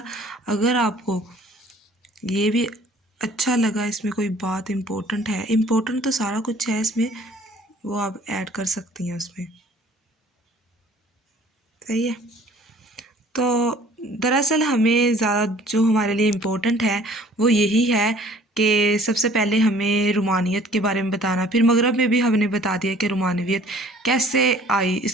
اگر آپ کو یہ بھی اچھا لگا، اس میں کوئی بات امپورٹنٹ ہے، امپورٹنٹ تو سارا کچھ ہے اس میں، وہ آپ ایڈ کر سکتی ہیں اس میں، صحیح ہے۔ تو دراصل ہمیں زیادہ جو ہمارے لیے امپورٹنٹ ہے وہ یہی ہے کہ سب سے پہلے ہمیں رومانیت کے بارے میں بتانا، پھر مغرب میں بھی ہم نے بتا دیا کہ رومانویت کیسے آئی، اس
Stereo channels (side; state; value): both; normal; correlation 0.53